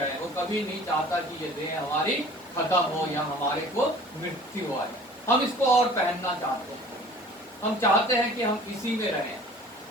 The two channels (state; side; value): normal; both; correlation 0.47